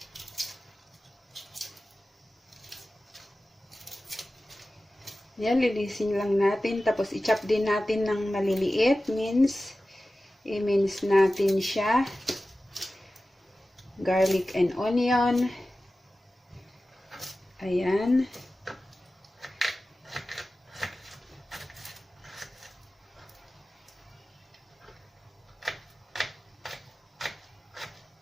Yan, lilisin lang natin. Tapos, i-chop din natin ng maliliit. I-mince natin siya. Garlic and onion. Ayan.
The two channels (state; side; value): normal; both; correlation 0.95